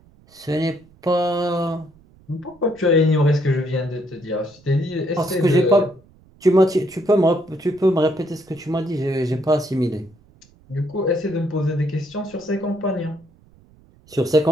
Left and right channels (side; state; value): right; noise; rumble, 28 dB below the sound